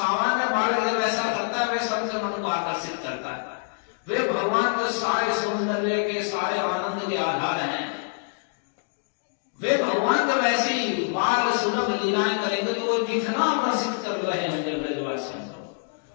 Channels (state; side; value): silent; right; digital silence